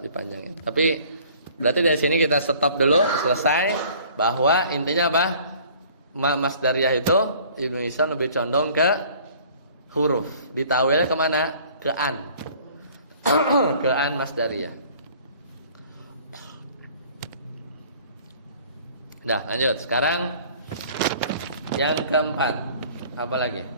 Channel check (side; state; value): both; inverted; correlation -0.52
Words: Tapi berarti dari sini kita stop dulu, selesai. Bahwa intinya apa? Masdariyah itu Ibnu Hisam lebih condong ke huruf. Ditawilnya kemana? Ke an. Ke an masdariyah. Nah lanjut. Sekarang Yang keempat, apa lagi?